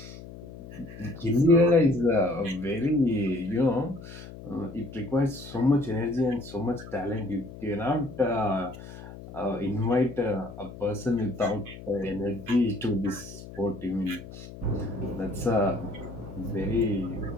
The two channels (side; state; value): left; noise; hum, 14 dB below the sound